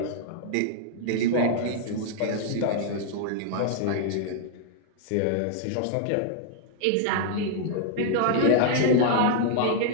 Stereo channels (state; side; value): different; both; correlation -0.01